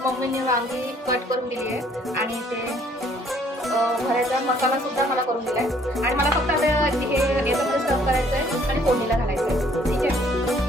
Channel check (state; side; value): normal; both; correlation 0.61